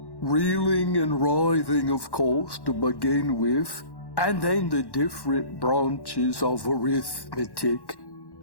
Reeling and writhing, of course, to begin with, and then the different branches of arithmetic,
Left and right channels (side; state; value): right; late; 1.1 ms